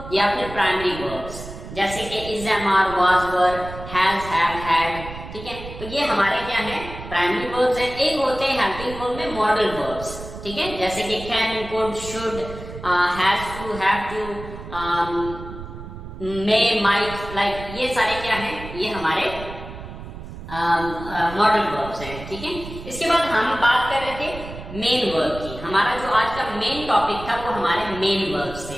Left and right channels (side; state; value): right; noise; rumble, 12 dB below the sound